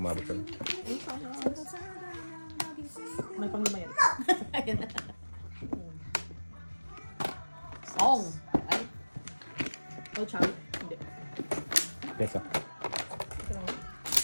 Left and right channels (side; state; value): both; inverted; correlation -1.00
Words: ka. May panglima yan. Ayan na. Song! Ay, Oh, chow. Hindi. Pesa. Ito lang.